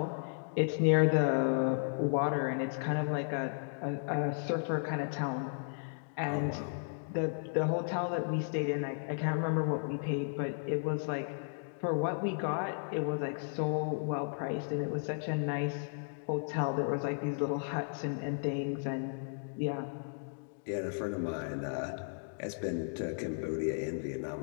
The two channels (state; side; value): silent; right; digital silence